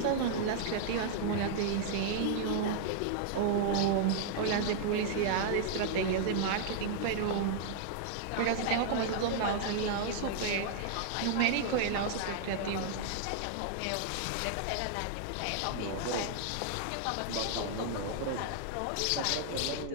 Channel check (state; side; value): different; both; correlation -0.01